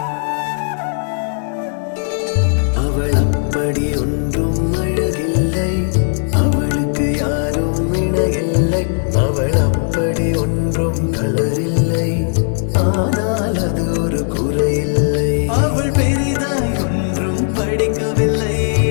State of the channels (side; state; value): right; silent; digital silence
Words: அவள் அப்படி ஒன்றும் அழகில்லை, அவளுக்கு யாரும் இணையில்லை. அவள் அப்படி ஒன்றும் கலரில்லை, ஆனால் அது ஒரு குறையில்லை. அவள் பெரிதாய் ஒன்றும் படிக்கவில்லை,